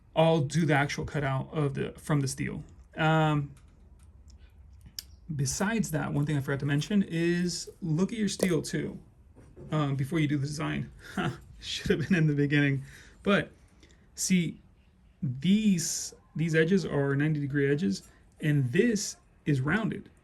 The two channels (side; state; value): both; identical; correlation 1.00